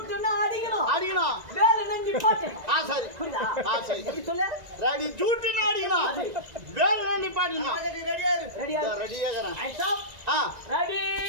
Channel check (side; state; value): left; late; 1.9 ms